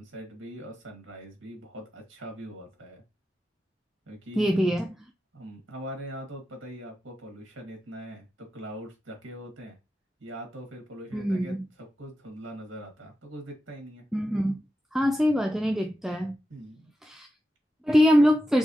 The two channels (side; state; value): both; normal; correlation 0.90